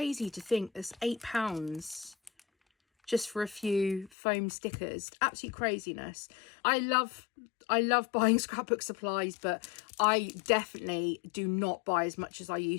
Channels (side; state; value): right; drops out; at 4.1 s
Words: to think there's £8 just for a few foam stickers. Absolute craziness. I love buying scrapbook supplies, but I definitely do not buy as much as I